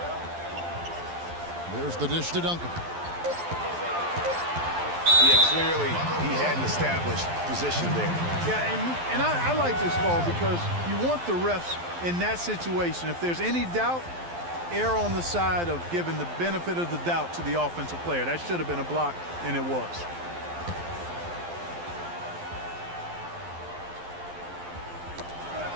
There's the dish to Duncan. Yeah, clearly he had an established position there. Yeah, and I like this call because you want the refs in that situation. If there's any doubt, err on the side of giving the benefit of the doubt to the offensive player. That should have been a block, and it was.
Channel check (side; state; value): left; late; 12 ms